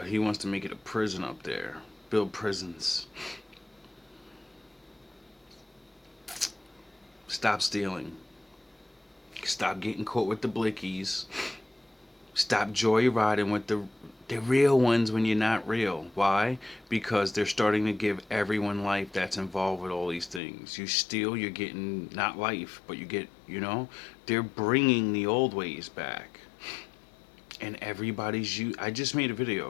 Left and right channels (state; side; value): drops out; right; at 20.4 s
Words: prison up there. Build prisons. Stop stealing. Stop getting caught with the blickies. Stop joyriding with the real ones when you're not real. Why? Because they're starting to give everyone life that's involved with all these things. You steal, you're getting not life, but you get, you know, they're bringing the old ways back. And I just made a video